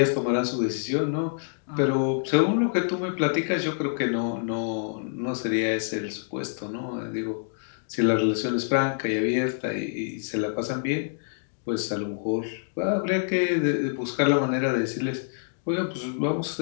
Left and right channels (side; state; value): right; silent; digital silence